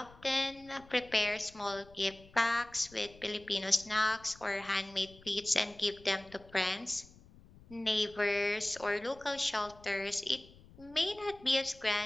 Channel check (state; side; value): noise; left; rumble, 23 dB below the sound